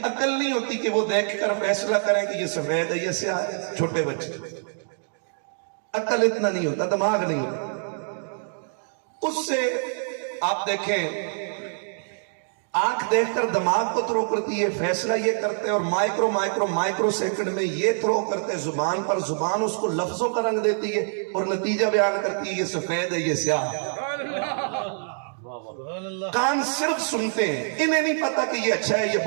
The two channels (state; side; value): silent; left; digital silence